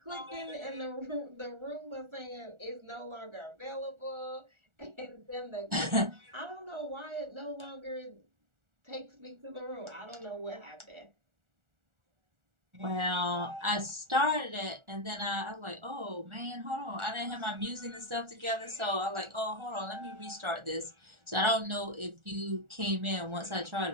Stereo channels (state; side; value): late; left; 1.4 ms